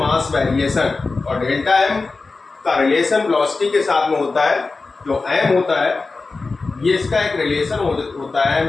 वेरिएशन और डेल्टा m का रिलेशन वेलोसिटी के साथ में होता है। जो m होता है ये इसका एक रिलेशन होता है, m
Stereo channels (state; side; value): quieter; right; 3.9 dB